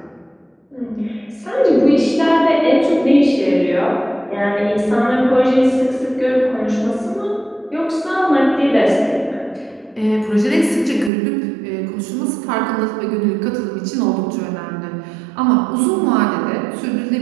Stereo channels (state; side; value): drops out; left; at 11.1 s